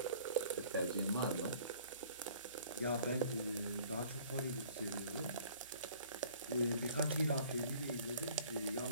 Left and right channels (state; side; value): inverted; both; correlation -0.53